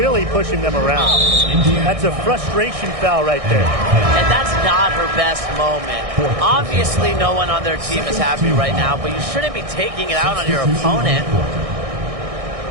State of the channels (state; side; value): late; left; 1.6 ms